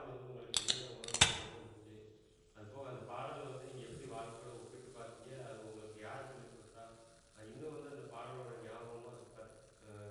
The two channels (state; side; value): identical; both; correlation 1.00